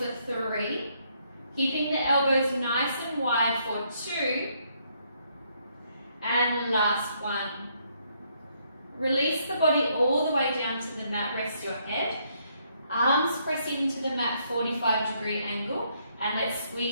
3. Keeping the elbows nice and wide for 2. And last 1. Release the body all the way down to the mat, rest your head. Arms press into the mat, 45-degree angle, and let's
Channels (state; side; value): inverted; both; correlation -0.72